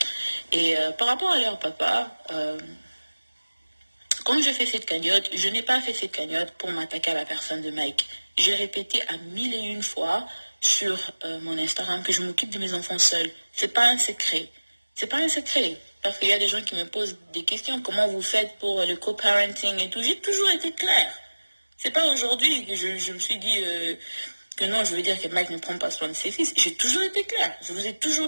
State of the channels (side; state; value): both; inverted; correlation -1.00